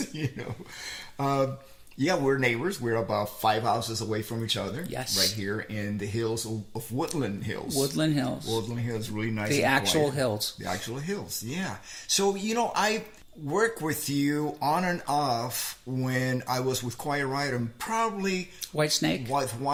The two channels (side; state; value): both; identical; correlation 1.00